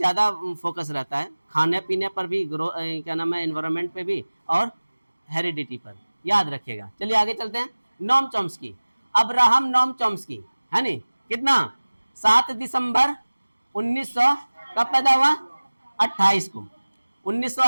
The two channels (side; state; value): both; inverted; correlation -1.00